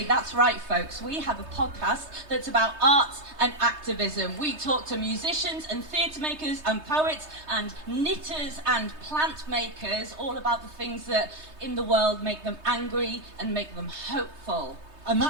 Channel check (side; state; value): left; late; 3.2 ms